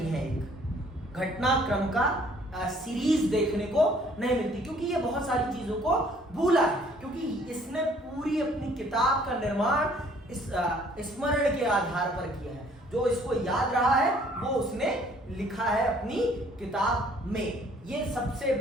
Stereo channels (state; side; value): normal; both; correlation 0.59